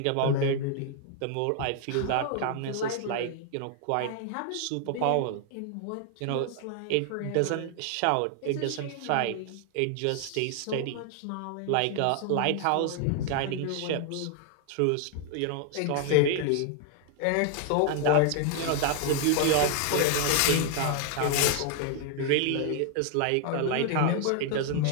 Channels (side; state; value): both; different; correlation 0.00